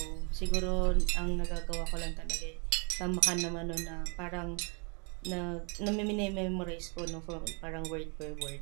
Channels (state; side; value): quieter; left; 35.1 dB